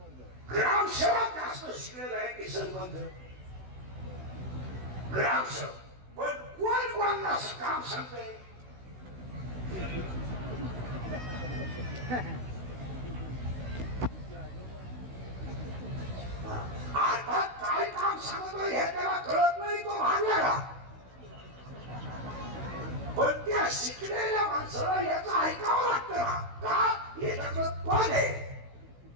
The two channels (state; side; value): late; left; 16 ms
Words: ग्रामसेवक जास्त शिकलेला आहे की सरपंच? ग्रामसेवक. पण कोण कोणाला असं काम सांगतंय? आता काय काम सांगतोय हे त्याला कळत नाही. तो भांडला. पण त्या शिकलेल्या माणसाला याचं ऐकावं लागतं ना. का? याच्याकडे पद आहे.